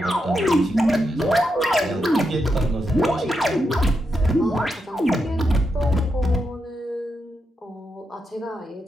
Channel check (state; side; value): normal; both; correlation 0.84